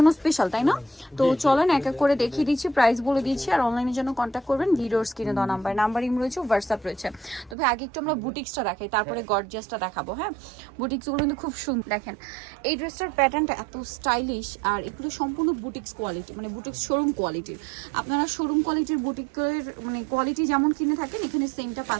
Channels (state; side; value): drops out; left; at 7.6 s